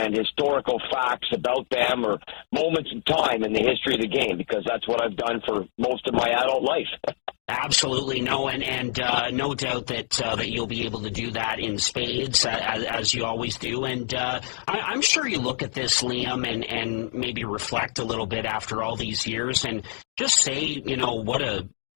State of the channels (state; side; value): silent; right; 61 dB below the other